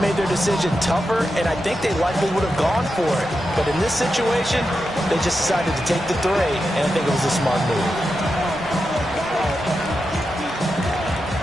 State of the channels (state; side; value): normal; both; correlation 0.88